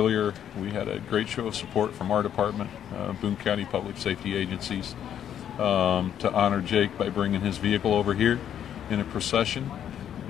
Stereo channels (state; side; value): quieter; right; 9.7 dB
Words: we had a great show of support from our department, Boone County Public Safety Agencies, to honor Jake by bringing his vehicle over here in a procession.